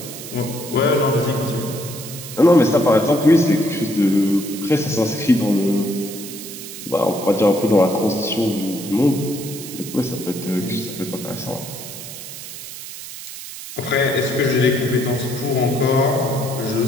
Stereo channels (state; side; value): noise; right; hiss, 11 dB below the sound